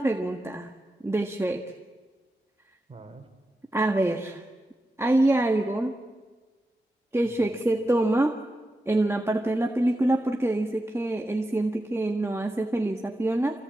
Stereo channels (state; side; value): normal; both; correlation 0.90